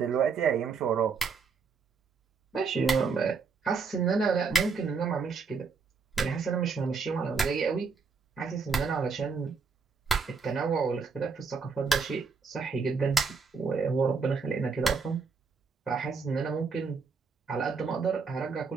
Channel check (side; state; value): left; quieter; 5.1 dB